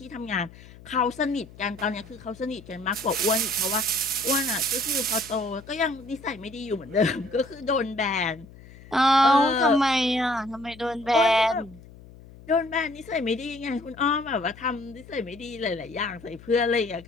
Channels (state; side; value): noise; left; hum, 20 dB below the sound